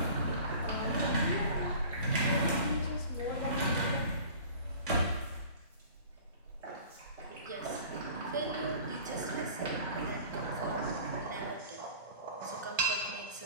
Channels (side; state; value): both; inverted; correlation -0.44